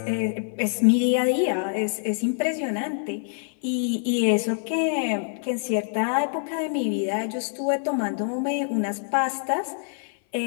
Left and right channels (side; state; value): right; silent; 56 dB below the other